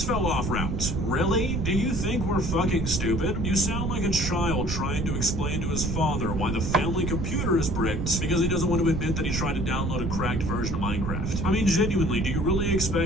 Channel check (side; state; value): right; noise; rumble, 2 dB below the sound